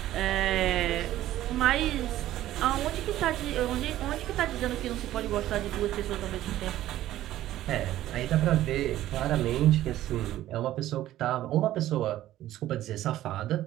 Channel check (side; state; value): left; quieter; 13.9 dB